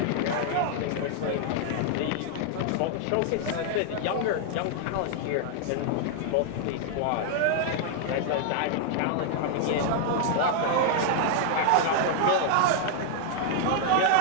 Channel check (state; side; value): different; both; correlation -0.01